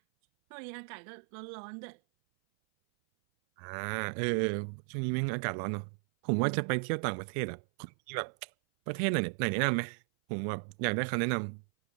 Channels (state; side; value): silent; left; 55 dB below the other